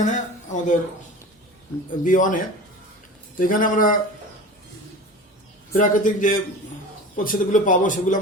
আমাদের B1 এ। তো এখানে আমরা প্রাকৃতিক যে প্রতিষেধকগুলো পাবো সেগুলো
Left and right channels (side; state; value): both; normal; correlation 0.35